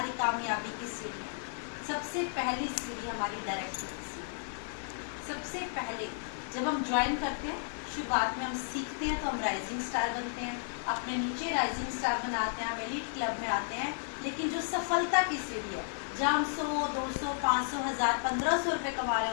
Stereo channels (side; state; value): right; silent; digital silence